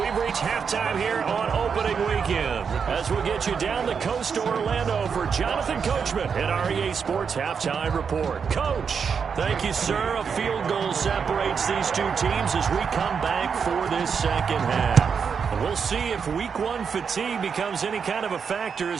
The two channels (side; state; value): left; quieter; 6.3 dB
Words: we've reached halftime here on opening weekend. As we get you down the coast to Orlando for Jonathan Coachman at our EA Sports Halftime Report. Coach, thank you, sir. A field goal separates these two teams as we come back for this second half. And we'll see if Week 1 fatigue becomes any kind of a factor